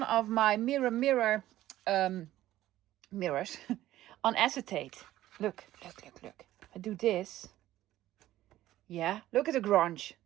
of my mirror mirrors on acetate. Look. I do this. Yeah, look at the grunge.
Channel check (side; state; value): left; quieter; 14.5 dB